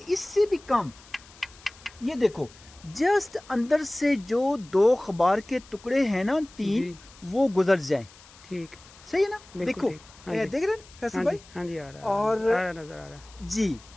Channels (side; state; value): left; noise; hiss, 23 dB below the sound